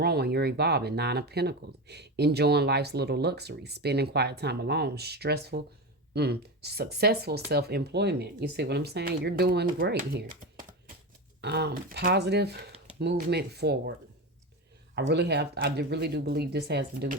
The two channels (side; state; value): both; normal; correlation 0.21